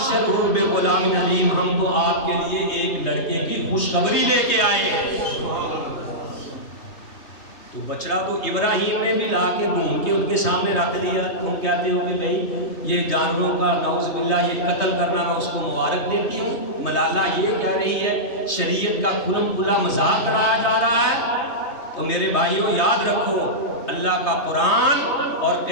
بغلام حلیم، ہم تو آپ کے لیے ایک لڑکے کی خوشخبری لے کے آئے ہیں۔ تو بچڑا تو ابراہیم نے بھی لا کے بھون کے ان کے سامنے رکھ دیا۔ تم کہتے ہو کہ بھائی یہ جانوروں کا نعوذ باللہ یہ قتل کرنا، میں اس کو مبارک دیتی ہوں۔ ملالہ یہ کہہ رہی ہے شریعت کا کھلم کھلا مذاق اڑایا جا رہا ہے۔ تو میرے بھائیوں یاد رکھو، اللہ کا قرآن اور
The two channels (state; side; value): late; right; 3.2 ms